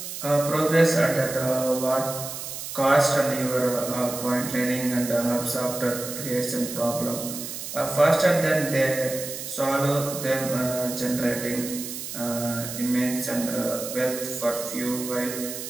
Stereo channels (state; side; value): noise; right; hiss, 8 dB below the sound